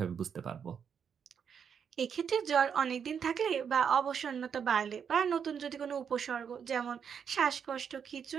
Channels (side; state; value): left; quieter; 7.3 dB